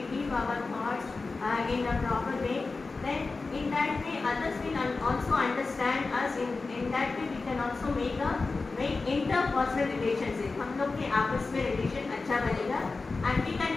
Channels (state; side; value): quieter; right; 3.9 dB